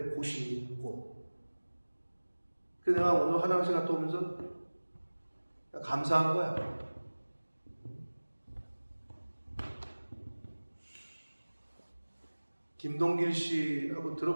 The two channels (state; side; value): inverted; both; correlation -1.00